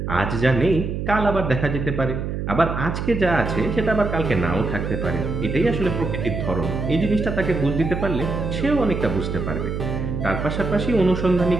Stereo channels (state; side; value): noise; right; hum, 4 dB below the sound